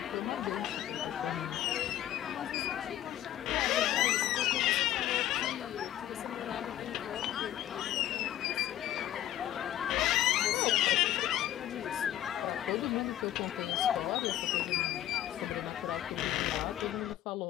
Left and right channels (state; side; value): quieter; right; 12.6 dB